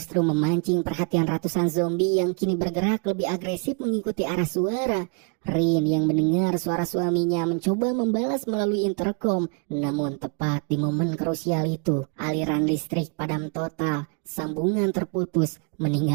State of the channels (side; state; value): left; quieter; 35.8 dB